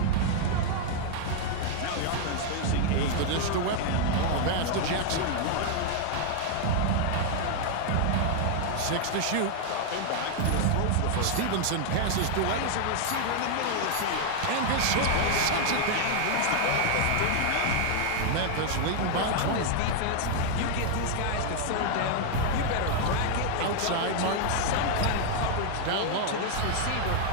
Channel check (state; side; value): different; both; correlation 0.00